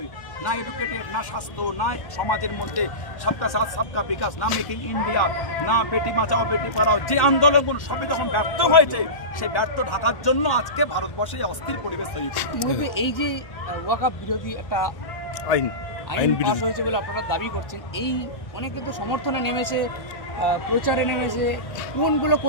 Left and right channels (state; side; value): late; right; 1.1 ms